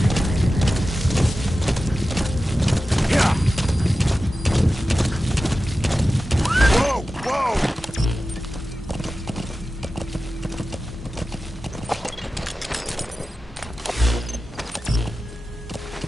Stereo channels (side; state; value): both; normal; correlation 0.93